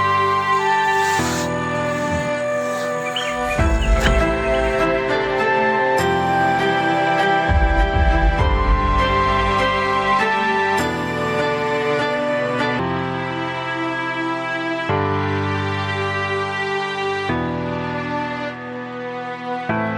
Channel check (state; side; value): identical; both; correlation 1.00